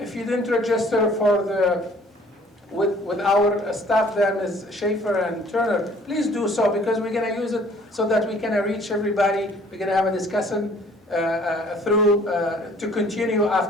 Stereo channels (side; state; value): both; normal; correlation 0.56